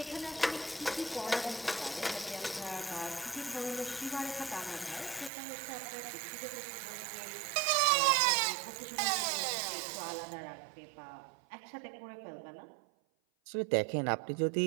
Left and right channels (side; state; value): left; drops out; at 5.3 s